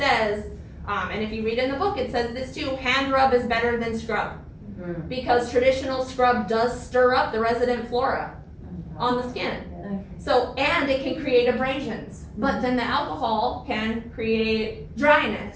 and if you read in the book, it says this too, hand rub is better than scrub. Because traditional scrub does stir up the resident flora on the skin. So, and it can create abrasions, but then the alcohol can create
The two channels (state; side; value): identical; both; correlation 1.00